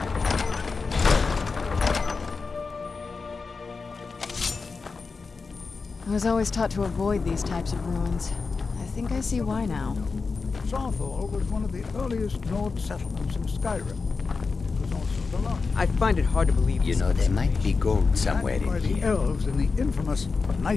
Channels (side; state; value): right; quieter; 4.5 dB